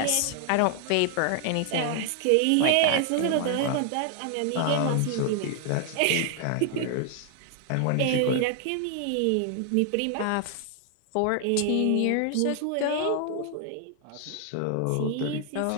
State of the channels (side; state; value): both; different; correlation 0.00